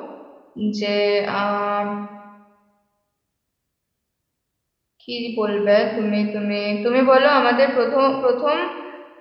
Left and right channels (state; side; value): identical; both; correlation 1.00